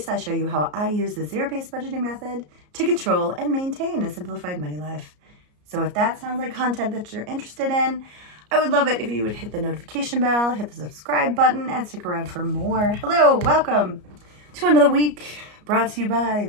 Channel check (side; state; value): left; late; 34 ms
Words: I show you how I use the zero-based budgeting method to control and maintain a simplified money life. So if that sounds like content that you're interested in, I would love it if you would hit the notification bell, hit the subscribe button, and stick around for more. Hello, welcome to another week brought to you by